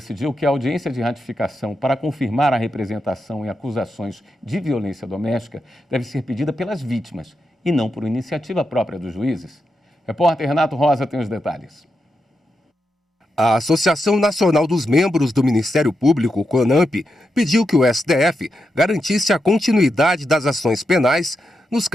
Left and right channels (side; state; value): both; normal; correlation 0.86